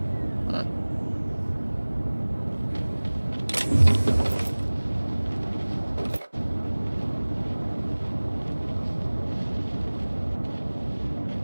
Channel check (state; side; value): inverted; both; correlation -1.00